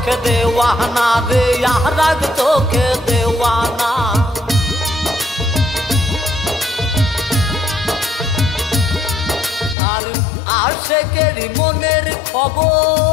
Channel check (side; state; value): right; drops out; at 9.8 s